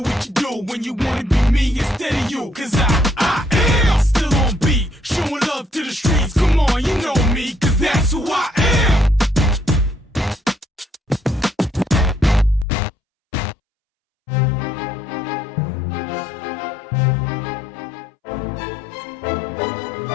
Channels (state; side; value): drops out; right; at 12.7 s